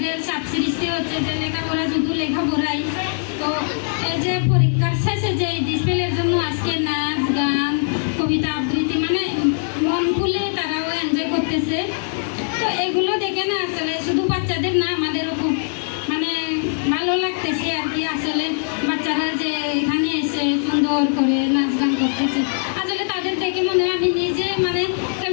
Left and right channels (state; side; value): silent; right; digital silence